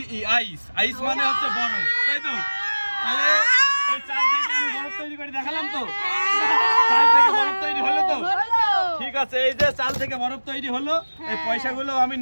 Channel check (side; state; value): both; inverted; correlation -1.00